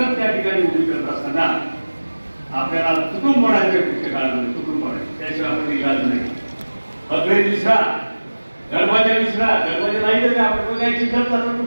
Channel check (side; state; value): both; inverted; correlation -1.00